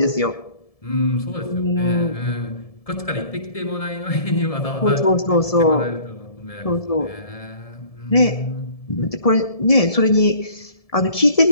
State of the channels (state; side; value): late; right; 1.7 ms